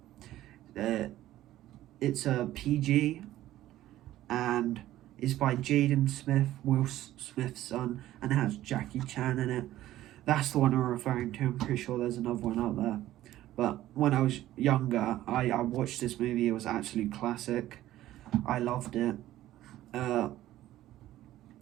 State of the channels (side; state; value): left; quieter; 14.3 dB